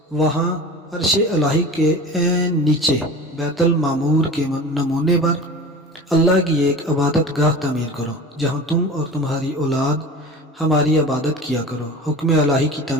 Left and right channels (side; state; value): both; normal; correlation 0.35